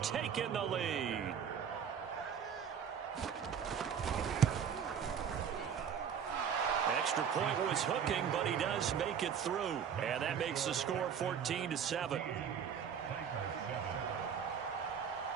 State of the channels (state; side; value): quieter; left; 7.7 dB